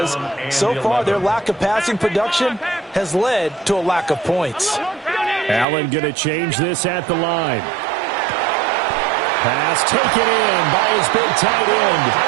so far their lack of passing production has led to a lack of points. Allen going to change this at the line. Pass taken in by his big tight end.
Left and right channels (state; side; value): drops out; left; at 5.7 s